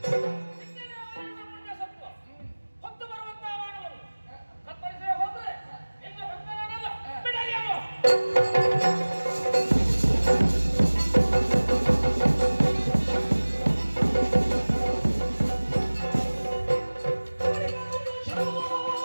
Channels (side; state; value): both; inverted; correlation -1.00